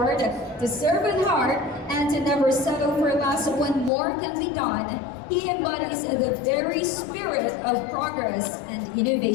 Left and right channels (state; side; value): drops out; right; at 3.9 s